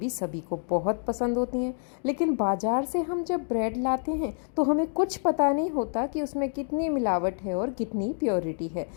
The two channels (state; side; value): silent; right; 60 dB below the other